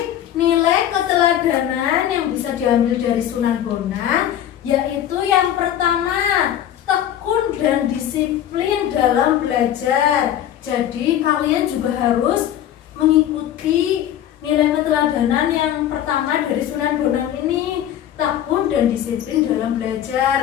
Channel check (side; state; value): right; quieter; 11.1 dB